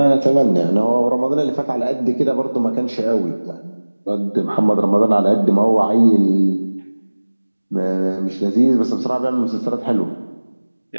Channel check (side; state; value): both; inverted; correlation -1.00